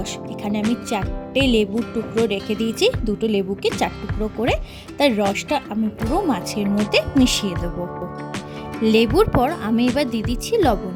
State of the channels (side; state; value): both; identical; correlation 1.00